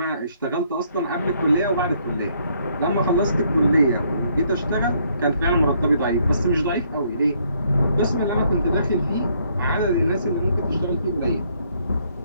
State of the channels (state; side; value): inverted; both; correlation -0.69